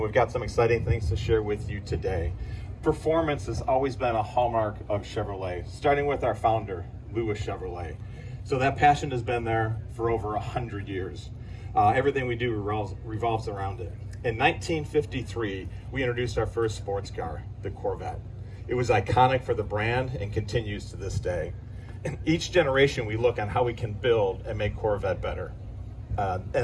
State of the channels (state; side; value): identical; both; correlation 1.00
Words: got some exciting things to share with you today. Performance has always been a hallmark of Chevrolet, starting with our founder, Louis Chevrolet. So that passion has been there for over 100 years. Everything we do revolves around it. In 1953, we introduced our first sports car, the Corvette. It was iconic for the brand and continues to this day. In each generation, we look on how we can build and make Corvette better.